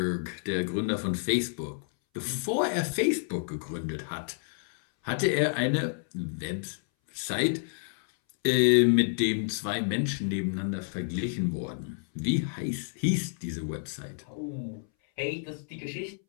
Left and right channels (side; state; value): right; silent; 58 dB below the other